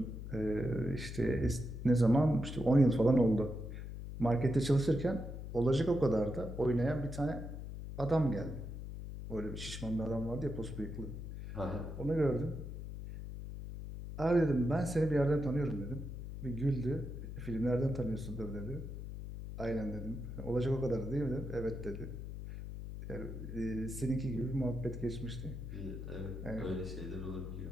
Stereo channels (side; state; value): left; noise; hum, 8 dB below the sound